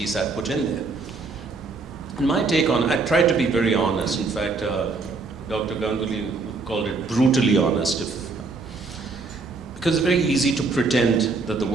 I put in there. And my take on, I tried to be very honest. In fact, Dr. Ganguly called it brutally honest. Because it's very easy to pretend that the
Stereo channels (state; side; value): quieter; left; 4.0 dB